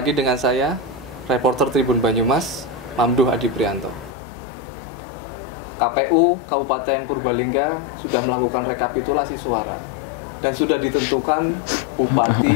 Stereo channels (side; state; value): right; drops out; at 4.1 s